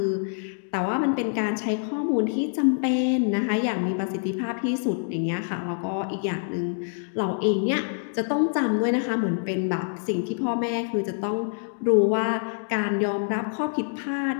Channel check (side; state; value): right; silent; digital silence